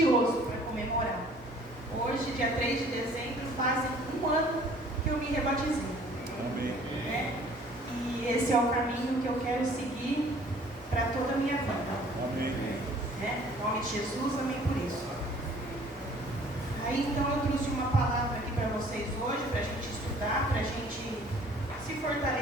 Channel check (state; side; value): normal; both; correlation 0.54